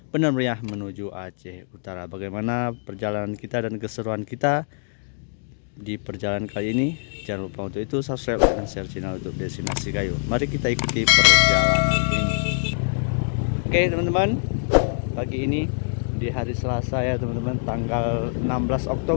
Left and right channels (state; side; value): silent; right; digital silence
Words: Benar Meriah menuju Aceh Utara. Bagaimana perjalanan kita dan keseruan kita di perjalanan kali ini? Jangan lupa untuk itu subscribe dan share channel YouTube Destinasi Kayu. Mari kita ikuti perjalanan ini. Oke teman-teman, pagi ini di hari Selasa ya teman-teman, tanggal 16